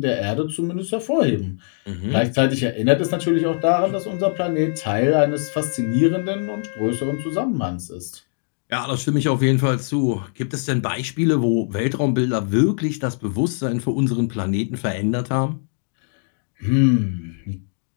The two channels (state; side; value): silent; right; 62 dB below the other